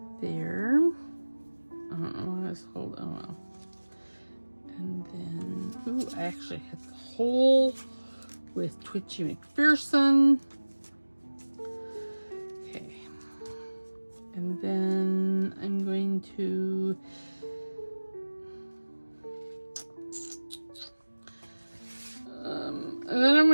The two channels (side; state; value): both; inverted; correlation -1.00